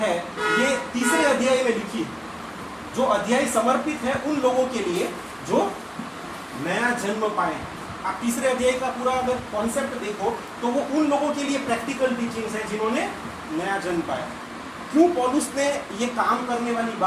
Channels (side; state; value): both; identical; correlation 1.00